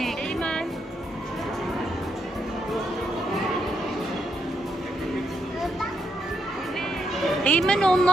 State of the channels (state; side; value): normal; both; correlation 0.79